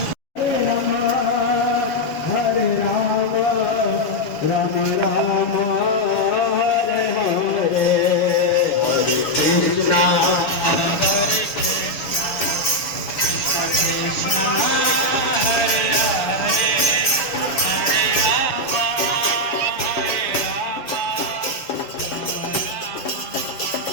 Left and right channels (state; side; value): late; right; 6.7 ms